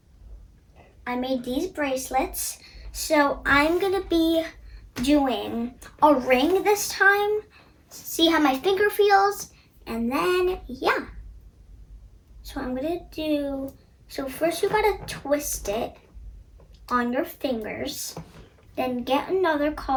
So I'm going to be doing a ring this time, see how my finger feels, and then yeah. So I'm gonna do, so first you gotta twist it on your fingers, then get another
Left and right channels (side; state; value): both; identical; correlation 1.00